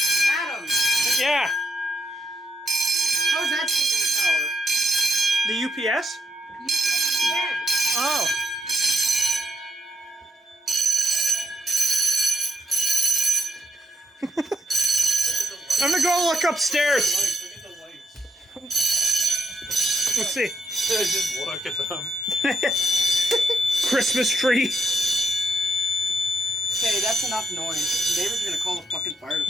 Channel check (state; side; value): normal; both; correlation 0.78